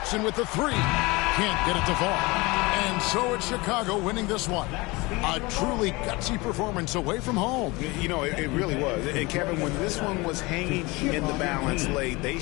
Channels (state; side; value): quieter; right; 23.9 dB